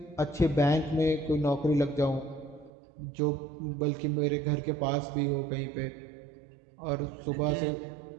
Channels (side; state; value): left; drops out; at 2.7 s